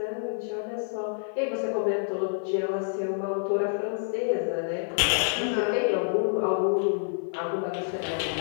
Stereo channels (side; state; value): right; silent; digital silence